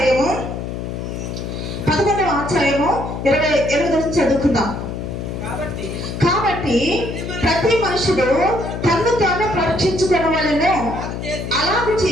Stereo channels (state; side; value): noise; left; hum, 6 dB below the sound